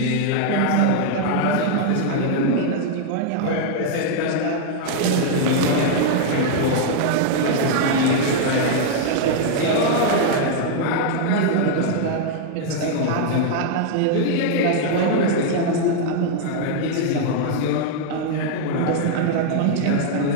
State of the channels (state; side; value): different; both; correlation 0.00